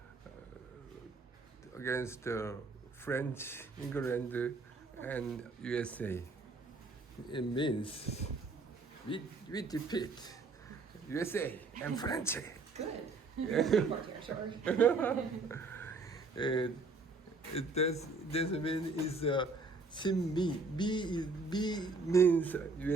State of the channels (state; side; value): quieter; left; 3.7 dB